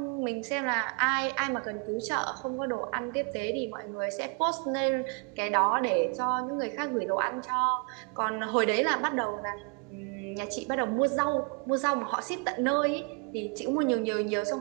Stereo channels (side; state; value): left; quieter; 34.5 dB